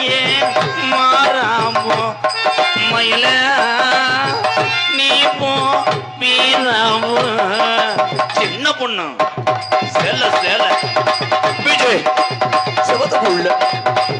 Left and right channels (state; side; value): identical; both; correlation 1.00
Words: மாறாமோ மயில நீ போ வீராமோ. சின்ன பொண்ணு சேல சேல விஜய் செவத்துக்குள்ள